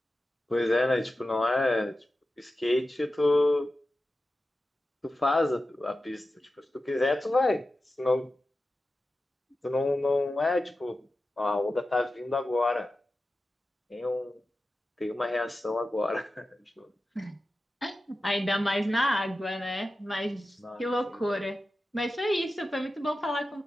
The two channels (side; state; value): both; normal; correlation 0.93